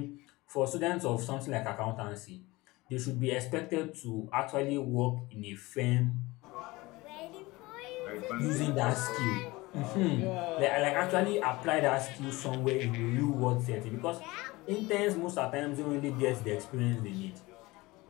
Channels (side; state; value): right; quieter; 21.5 dB